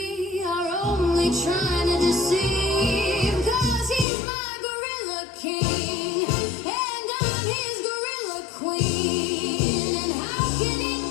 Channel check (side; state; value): right; drops out; at 4.0 s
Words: are only trying to deceive. 'Cause he's my gorilla king, and I'm his gorilla queen. And how can it